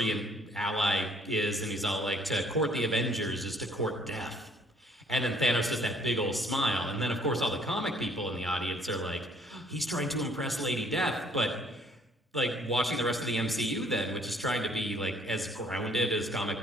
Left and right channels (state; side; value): normal; both; correlation 0.62